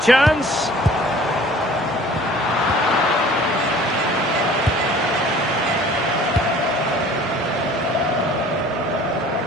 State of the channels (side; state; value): both; normal; correlation 0.49